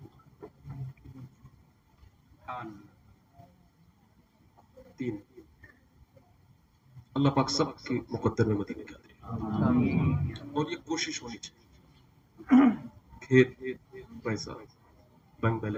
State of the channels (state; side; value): identical; both; correlation 1.00